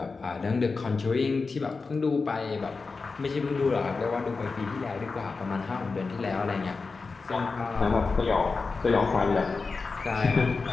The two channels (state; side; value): quieter; right; 4.3 dB